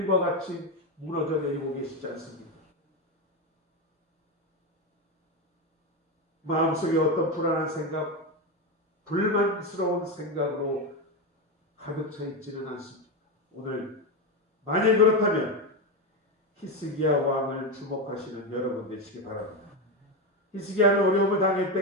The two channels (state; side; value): normal; both; correlation 0.12